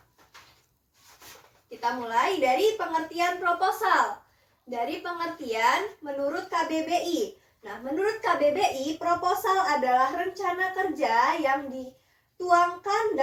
Kita mulai dari pengertian proposal. Dari pengertian menurut KBBI. Nah, menurut KBBI, proposal adalah rencana kerja yang dituangkan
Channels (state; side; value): identical; both; correlation 1.00